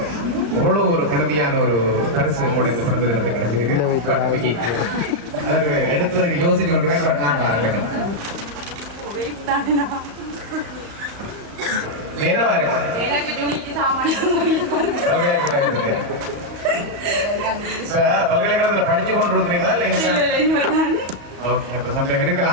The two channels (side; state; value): left; late; 35 ms